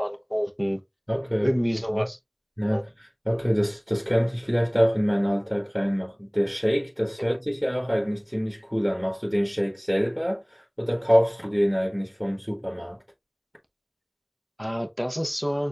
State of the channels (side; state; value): both; identical; correlation 1.00